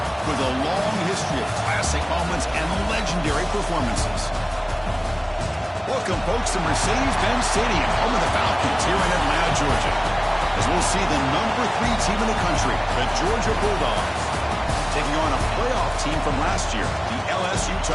with a long history of classic moments and legendary performances. Welcome, folks, to Mercedes-Benz Stadium, home of the Falcons here in Atlanta, Georgia, as we'll see the #3 team in the country, the Georgia Bulldogs, taking on a playoff team from last year, the LSU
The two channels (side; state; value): both; identical; correlation 1.00